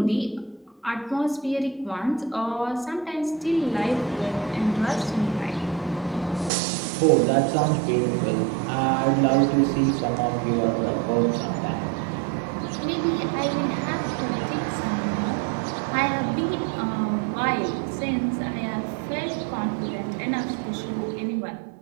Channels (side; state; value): left; drops out; at 6.5 s